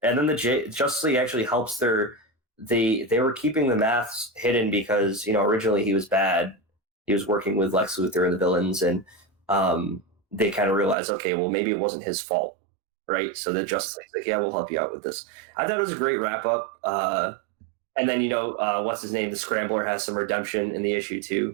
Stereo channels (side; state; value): left; drops out; at 11.0 s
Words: then the Justice League actually helps they were keeping the maths hidden because, originally he was bad. He was working with Lex Luthor and the villains, and they kind of realized, okay, well, maybe it wasn't his fault. Right, so the Justice League's like, yeah, we'll help you out with this. I thought it was a great wrap up. And then what's his name? The Scrambler has some redemption in the issue